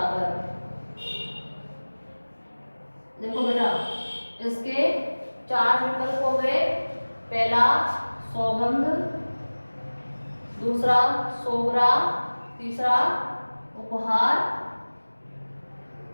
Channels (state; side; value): inverted; both; correlation -1.00